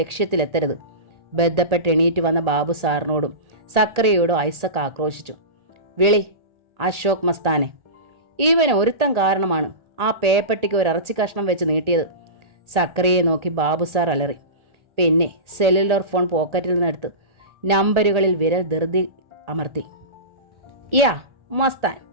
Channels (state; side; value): late; left; 1.8 ms